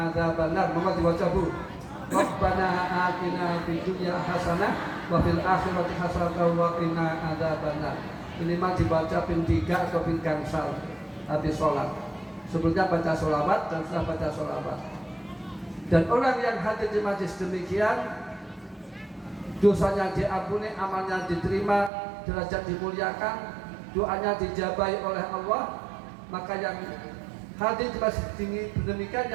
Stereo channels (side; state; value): left; drops out; at 21.9 s